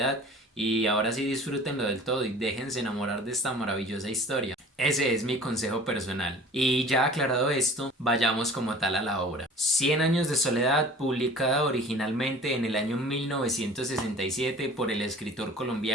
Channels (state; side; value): normal; both; correlation 0.45